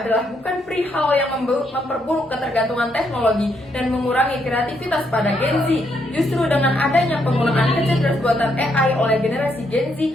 bukan perihal yang memperburuk ketergantungan teknologi dan mengurangi kreativitas pada Gen Z. Justru dengan adanya penggunaan kecerdasan buatan AI oleh generasi Gen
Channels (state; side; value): normal; both; correlation 0.75